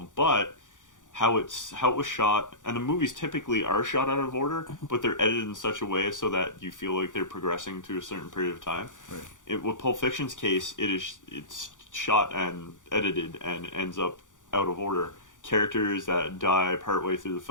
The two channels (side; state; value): right; late; 0.87 ms